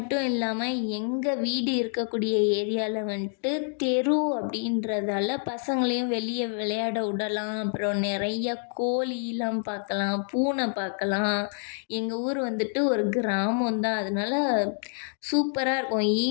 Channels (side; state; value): right; silent; 60 dB below the other